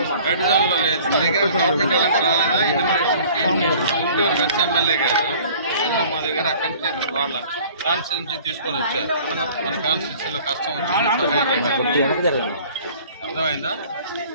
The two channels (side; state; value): both; inverted; correlation -0.50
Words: లో లేదు. మీ దగ్గర గవర్నమెంట్ వాళ్ళు ఎవరు రాలేదా? గుంటూరు వెస్ట్ ఎమ్మెల్యే గారు మా దగ్గర అక్కడి నుంచి వాళ్ళ కాన్స్టిట్యూన్సీ తీసుకొని వచ్చారు. మన కాన్స్టిట్యూన్సీలో కష్టం వచ్చింది. అర్థమైందా?